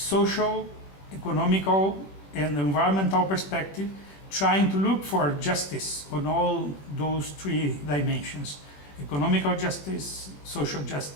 economical, and environmental perspective, trying to look for justice on all those three dimensions: economical justice, social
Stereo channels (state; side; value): late; right; 21 ms